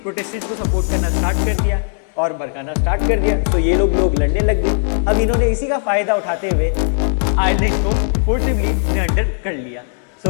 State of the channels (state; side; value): silent; right; digital silence